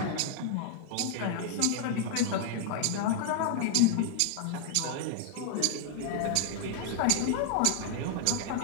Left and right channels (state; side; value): different; both; correlation 0.00